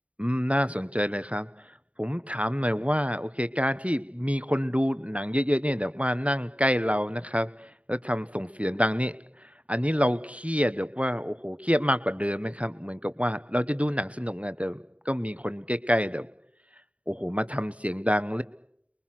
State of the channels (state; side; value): late; left; 0.065 ms